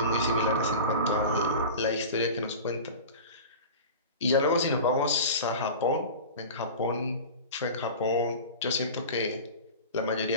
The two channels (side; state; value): both; inverted; correlation -0.34